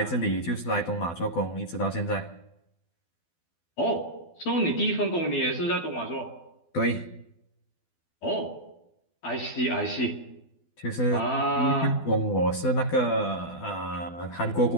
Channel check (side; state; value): right; late; 12 ms